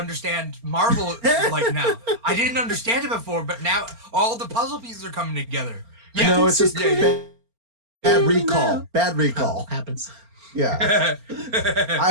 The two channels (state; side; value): late; left; 4.3 ms